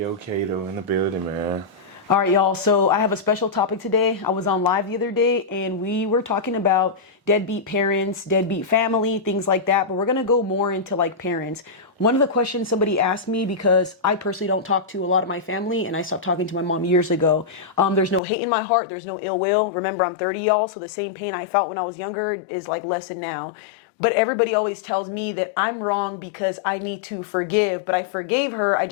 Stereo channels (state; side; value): drops out; right; at 18.2 s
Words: Kato in the building, man. all right, y'all. So I have a special topic today. I was on live the other day, and we were talking about deadbeat parents, deadbeat family, things like that. But we're gonna go more into like parents. One of the questions somebody asked me, because I personally don't talk to a lot of my family, and I stopped talking to my mom years ago. There's no hate in my heart. There's no ill will. Remember, I'm 30, y'all. So the same pain I felt when I was younger is like lessened now. But everybody always tells me that I'm wrong because I need to forgive, but I forgave her, I